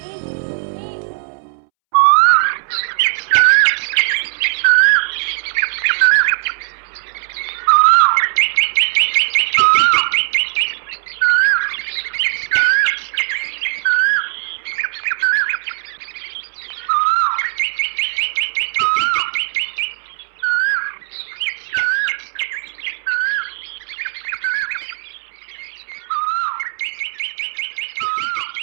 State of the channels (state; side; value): silent; left; 67 dB below the other